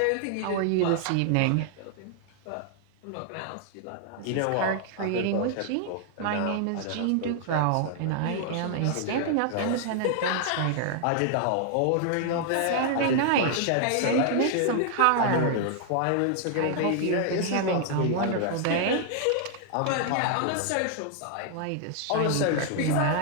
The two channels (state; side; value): different; both; correlation 0.00